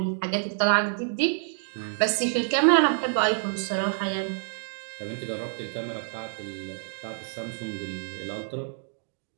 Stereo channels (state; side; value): silent; left; digital silence